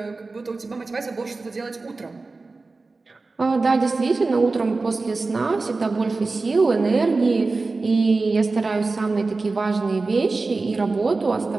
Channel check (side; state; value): left; quieter; 3.7 dB